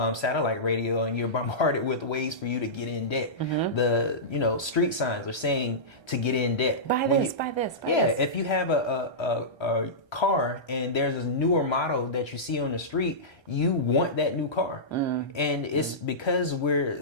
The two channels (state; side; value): late; right; 1.3 ms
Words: satellite radio, and you're bombarded with ways for you to get in debt. The, street signs are saying to get in debt. Buy this. Yeah, if you have a car and there's a newer model that you see on the street, you want that new car. And it's because we're